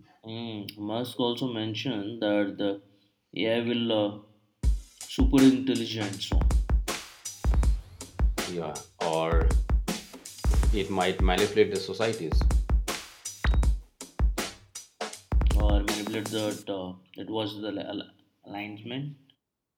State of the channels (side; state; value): both; identical; correlation 1.00